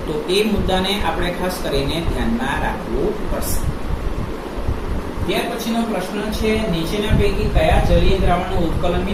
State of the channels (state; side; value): identical; both; correlation 1.00